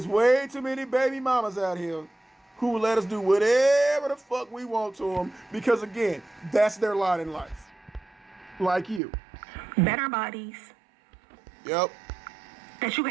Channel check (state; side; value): drops out; left; at 9.0 s